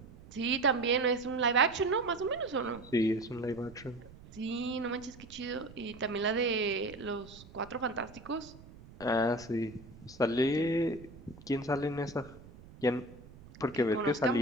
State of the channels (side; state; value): right; noise; rumble, 19 dB below the sound